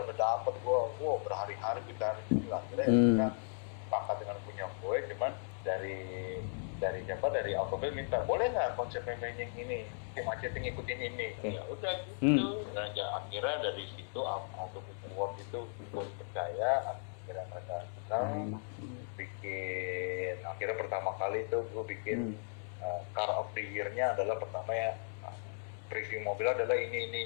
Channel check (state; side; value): silent; right; 53 dB below the other